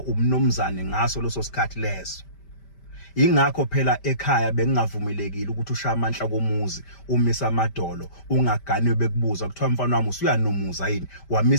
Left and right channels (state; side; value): late; right; 5.1 ms